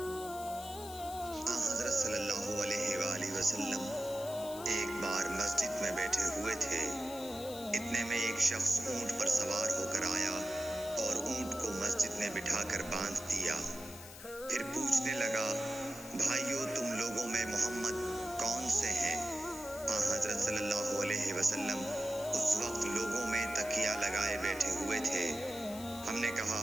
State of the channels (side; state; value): left; noise; hiss, 14 dB below the sound